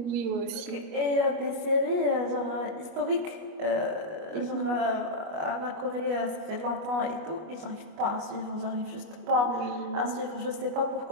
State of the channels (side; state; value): left; late; 25 ms